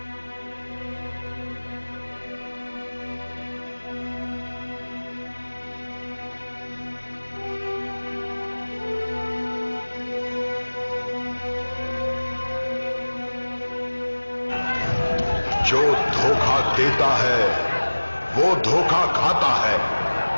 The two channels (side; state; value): both; inverted; correlation -1.00